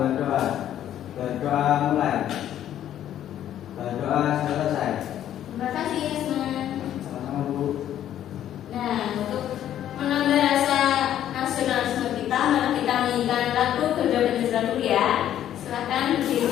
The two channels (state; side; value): quieter; right; 11.2 dB